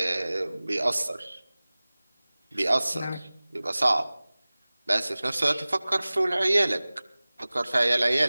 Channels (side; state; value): both; inverted; correlation -0.99